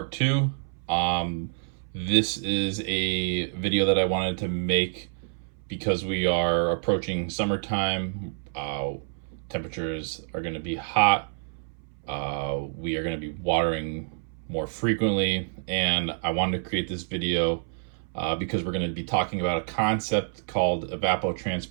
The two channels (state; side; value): silent; left; 60 dB below the other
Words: two. This is a video that I wanted to make because we are approaching summertime. Temperatures are going to be hot. We are going to be watering more frequently, and I wanted to create this video because we're going to be talking about a concept called